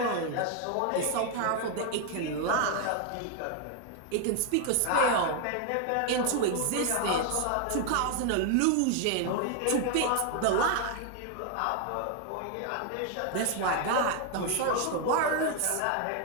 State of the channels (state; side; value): different; both; correlation 0.00